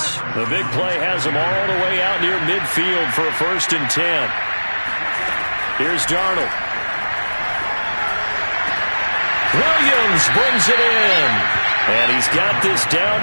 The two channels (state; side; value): inverted; both; correlation -1.00